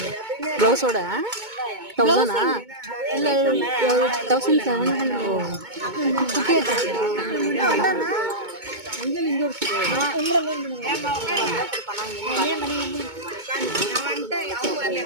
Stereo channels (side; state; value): left; late; 2.2 ms